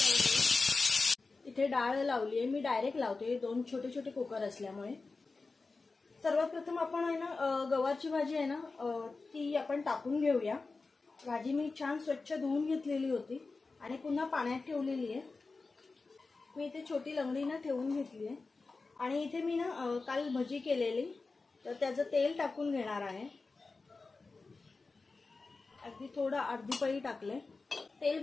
इथे डाळ लावली आहे। मी डायरेक्ट लावते, दोन छोटे छोटे कुकर असल्यामुळे। सर्वात प्रथम आपण गवारची भाजी आहे ना ती आपण टाकून घेऊया। भाजी मी छान स्वच्छ धुवून घेतलेली होती आणि पुन्हा पाण्यात ठेवलेली आहे। मी इथे छोटी लंगडी ठेवून घेतली आहे आणि इथे मी काल भजी केलेली, तर त्याचं तेल टाकून घेणार आहे। अगदी थोडं अर्धी पळी टाकले। तेल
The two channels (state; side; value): quieter; right; 3.9 dB